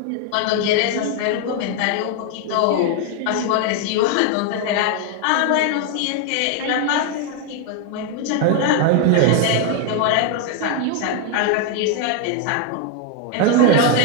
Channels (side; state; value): both; different; correlation 0.01